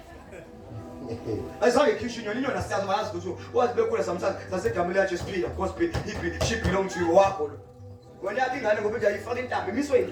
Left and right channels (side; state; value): both; identical; correlation 1.00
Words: ayizange ikhishwa inyoni asiyazi bayazi ukuthi wathi bekhula samthatha sasegamela yacho siphila gospel she belong to you wakho lo wena yathi ingane ngoba nje ayifaka intambo imiswe